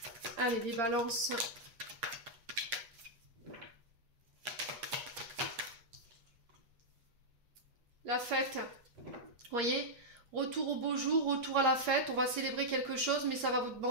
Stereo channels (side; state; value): left; late; 8.6 ms